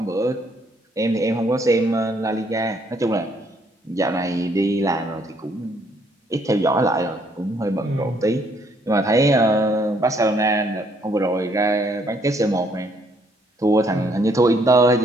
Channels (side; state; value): both; normal; correlation 0.68